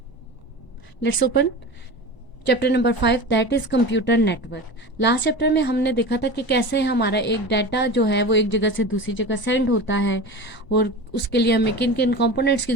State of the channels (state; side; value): late; right; 1.0 ms